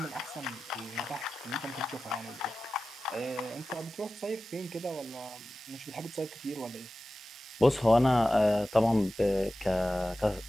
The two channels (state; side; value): normal; both; correlation 0.95